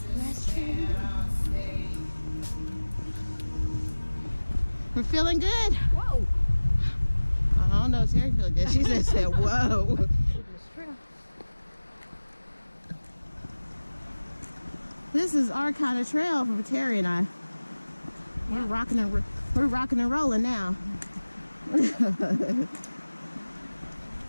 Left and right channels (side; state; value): both; inverted; correlation -1.00